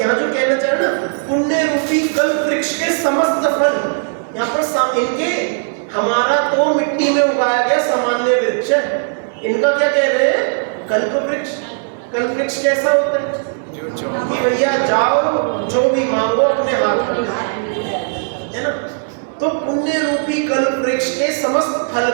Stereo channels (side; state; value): left; silent; 68 dB below the other